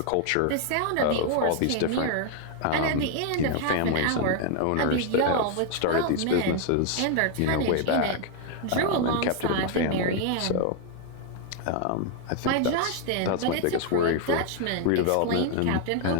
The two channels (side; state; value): both; different; correlation 0.00